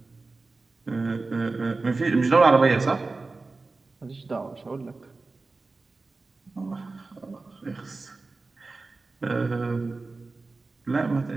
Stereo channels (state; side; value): quieter; left; 3.7 dB